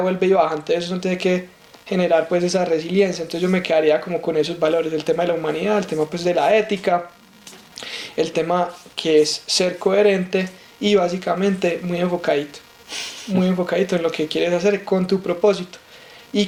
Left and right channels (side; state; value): both; identical; correlation 1.00